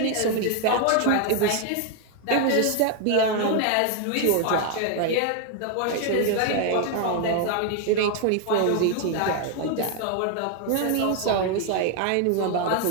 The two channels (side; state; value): both; different; correlation 0.01